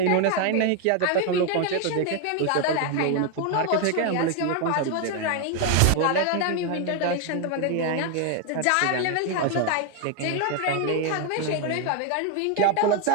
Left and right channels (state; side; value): different; both; correlation 0.01